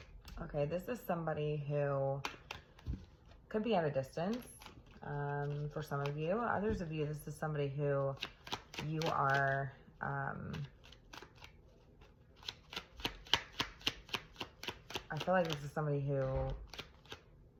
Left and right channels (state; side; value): identical; both; correlation 1.00